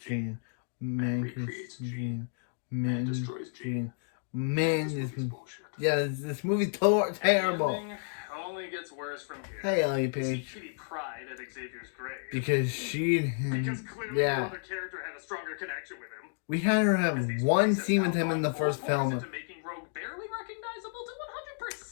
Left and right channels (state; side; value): silent; right; digital silence